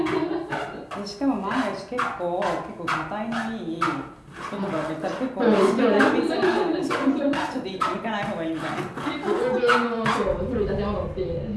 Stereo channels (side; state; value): both; identical; correlation 1.00